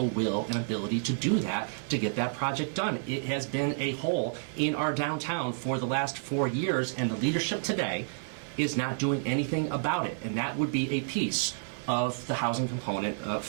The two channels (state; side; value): silent; left; digital silence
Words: will and ability to do that, to get that project done. It has been a hole in our downtown for the last 4 years, and the leadership today is not doing anything about it. And that would be a piece of the housing component